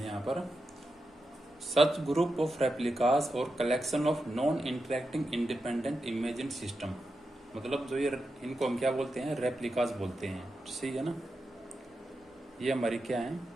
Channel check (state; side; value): normal; both; correlation 0.88